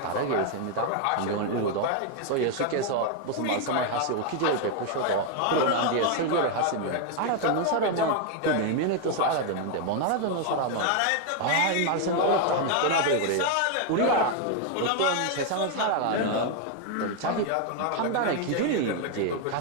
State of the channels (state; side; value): different; both; correlation 0.01